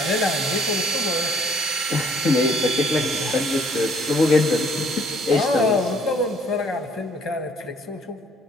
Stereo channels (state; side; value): normal; both; correlation 0.61